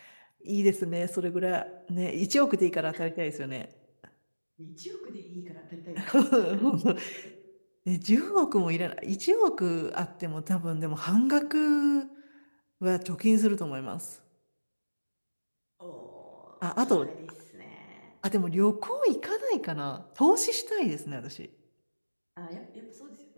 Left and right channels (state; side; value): inverted; both; correlation -1.00